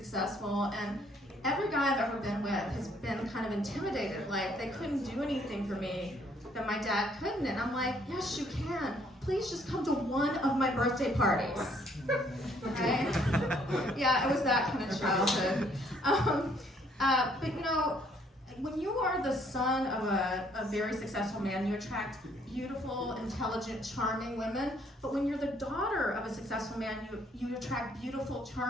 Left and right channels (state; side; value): normal; both; correlation 0.65